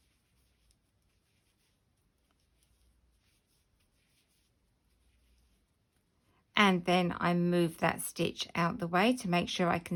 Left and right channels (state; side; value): identical; both; correlation 1.00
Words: And then I move that stitch out the way to make sure I